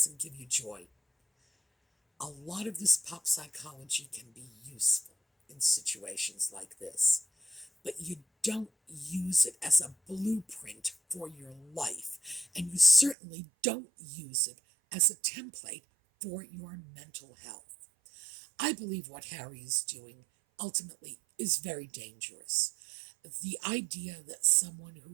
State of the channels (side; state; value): left; drops out; at 13.2 s